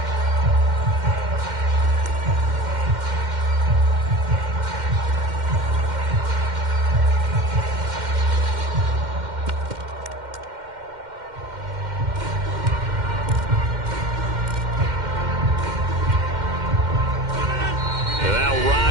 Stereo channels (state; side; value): late; left; 2.1 ms